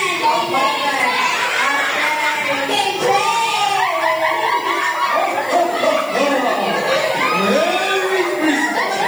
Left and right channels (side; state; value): left; noise; hiss, 21 dB below the sound